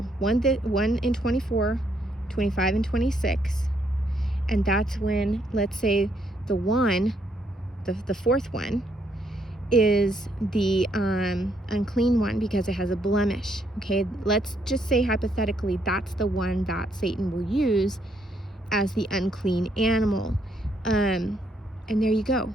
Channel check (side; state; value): both; normal; correlation 0.73